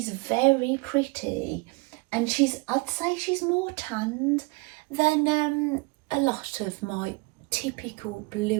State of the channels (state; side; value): quieter; left; 26.9 dB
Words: very pretty, and I'd say she's more tanned than a lot of my typical